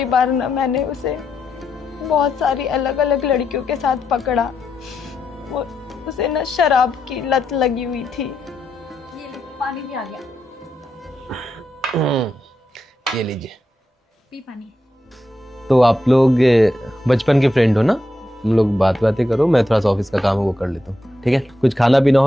बार ना मैंने उसे बहुत सारी अलग अलग लड़कियों के साथ पकड़ा। वो उसे ना शराब की लत लगी हुई थी। ये ले, पानी भी आ गया, ये लीजिए। पी पानी। तो आप लोग बचपन के फ्रेंड हो ना? तुम लोग बातें करो, मैं थोड़ा सा ऑफिस का काम है वो कर लेता हूँ, ठीक है? कुछ खाना पीना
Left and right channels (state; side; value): normal; both; correlation 0.84